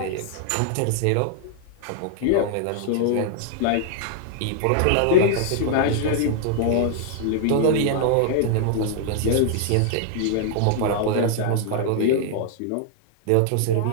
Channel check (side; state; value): both; different; correlation -0.01